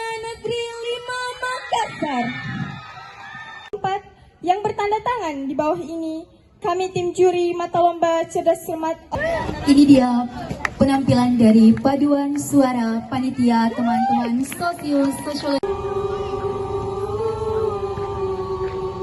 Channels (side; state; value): both; identical; correlation 1.00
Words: Negeri 5 Makassar. 4 yang bertanda tangan di bawah ini, kami tim juri mata lomba cerdas cermat. Ini dia penampilan dari paduan suara panitia teman-teman sosiologi.